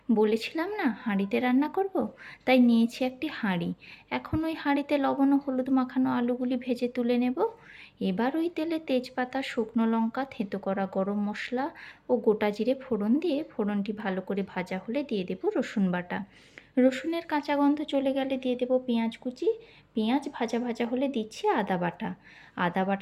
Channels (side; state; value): both; identical; correlation 1.00